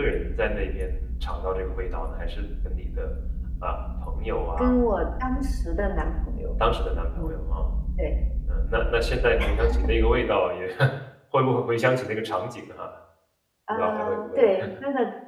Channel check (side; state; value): both; identical; correlation 1.00